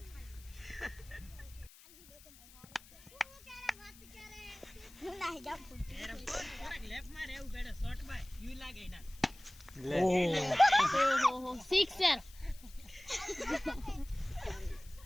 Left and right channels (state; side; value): noise; left; hiss, 22 dB below the sound